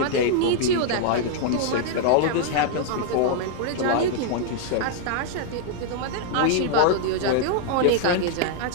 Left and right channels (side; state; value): both; different; correlation -0.01